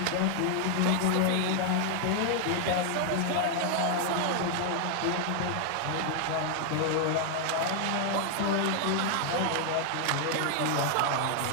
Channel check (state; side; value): different; both; correlation 0.00